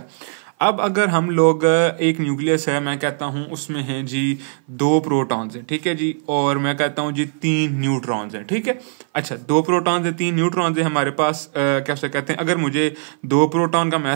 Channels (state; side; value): silent; left; 58 dB below the other